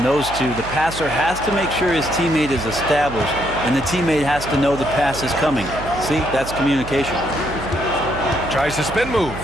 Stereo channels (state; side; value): noise; right; hum, 12 dB below the sound